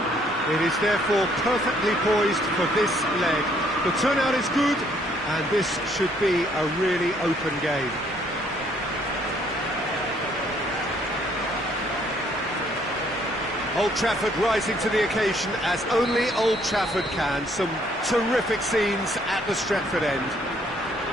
It is therefore perfectly poised for this leg. The turnout is good and this should be a really open game. Old Trafford rising to the occasion as only Old Trafford can. Some terrific scenes at the Stretford end.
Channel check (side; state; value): both; normal; correlation 0.65